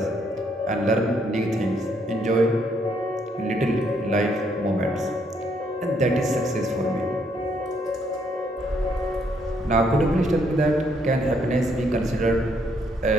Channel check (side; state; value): both; normal; correlation 0.71